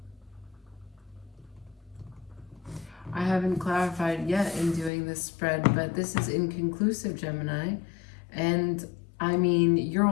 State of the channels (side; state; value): right; drops out; at 4.9 s